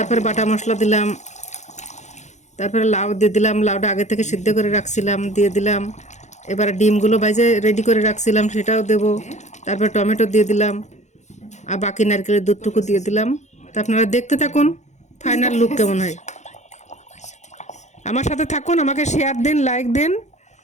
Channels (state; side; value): late; right; 0.34 ms